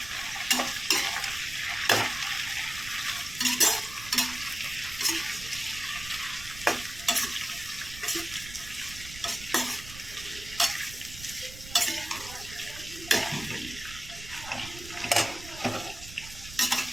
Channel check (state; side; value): noise; right; rumble, 14 dB below the sound